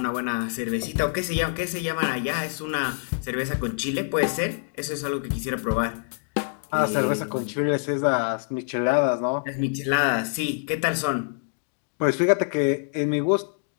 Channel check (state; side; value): silent; right; digital silence